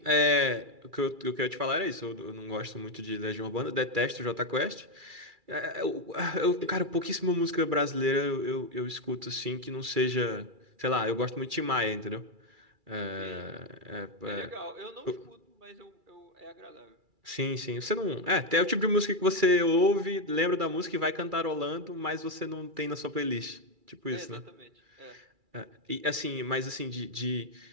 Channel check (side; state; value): left; late; 2.3 ms